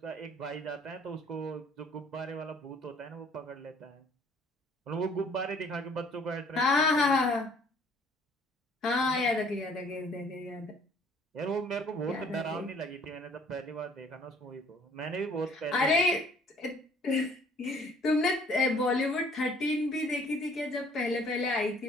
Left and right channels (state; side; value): normal; both; correlation 0.58